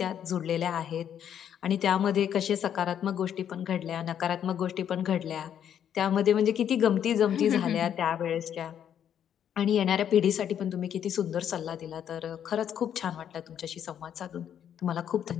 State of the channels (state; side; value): quieter; right; 9.3 dB